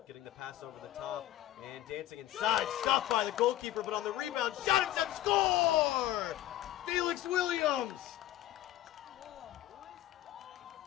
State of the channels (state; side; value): quieter; right; 13.8 dB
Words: getting the pass over the top, and dancing inside. Stopped by the goalkeeper, but on the rebound, shot attempt, score! Felix Williams!